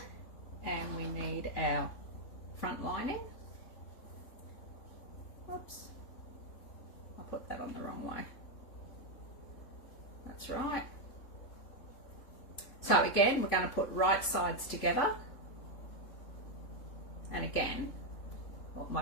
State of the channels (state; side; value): late; right; 3.5 ms